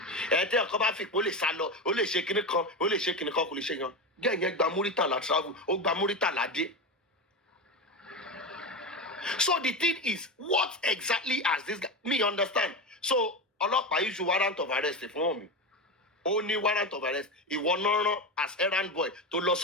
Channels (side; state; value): both; normal; correlation 0.19